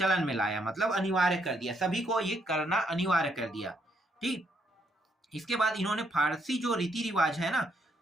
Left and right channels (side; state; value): both; normal; correlation 0.74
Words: में लाया, मतलब अनिवार्य कर दिया, सभी को ये करना अनिवार्य कर दिया। ठीक, इसके बाद इन्होंने फारसी जो रीति रिवाज है ना,